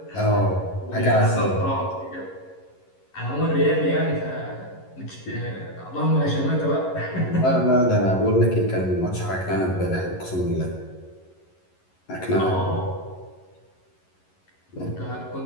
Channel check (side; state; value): right; late; 11 ms